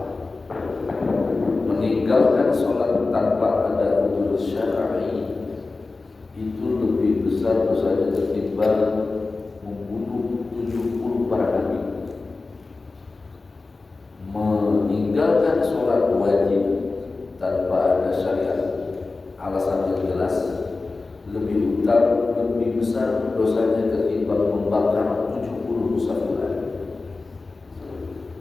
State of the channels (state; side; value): quieter; right; 3.7 dB